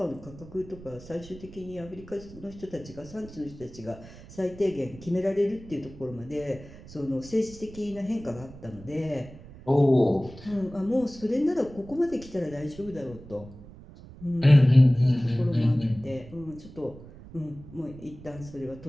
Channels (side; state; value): right; noise; rumble, 18 dB below the sound